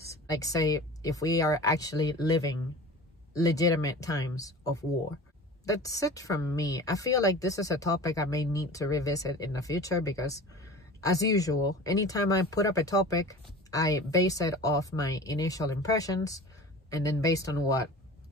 Like, say, if we are actually living legitimate times of war. That's it from me. I feel like this is a topic I may need to revisit in the future, because as usual, anytime I put up a topic, I base it off my initial impressions, and then based on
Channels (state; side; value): normal; both; correlation 0.38